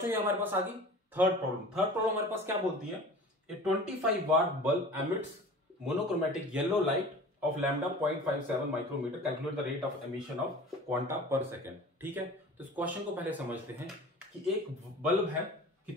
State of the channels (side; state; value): both; normal; correlation 0.40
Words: ये हमारे पास आ गई थर्ड प्रॉब्लम। थर्ड प्रॉब्लम हमारे पास क्या बोलती है, a 25 watt bulb emits monochromatic yellow light of lambda 0.57 micrometer, calculate the rate of emission of quanta per second. ठीक है, तो इस क्वेश्चन को पहले समझते हैं कि एक बल्ब है,